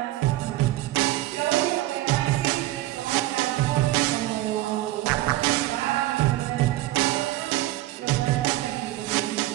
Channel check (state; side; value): quieter; left; 16.3 dB